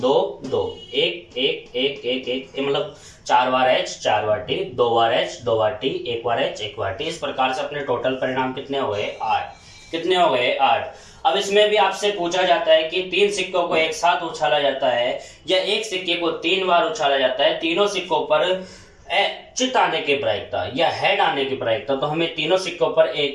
2 1 1 1 1 1, मतलब 4 बार H 4 बार T, 2 बार H 2 बार T, 1 बार H 1 बार T। इस प्रकार से अपने टोटल परिणाम कितने हो गए? 8। कितने हो गए? 8। अब इसमें भी आपसे पूछा जाता है कि 3 सिक्कों को एक साथ उछाला जाता है या 1 सिक्के को 3 बार उछाला जाता है, तीनों सिक्कों पर चित आने की प्रायिकता या हेड आने की प्रायिकता। तो हमें तीनों सिक्कों पर एक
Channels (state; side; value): identical; both; correlation 1.00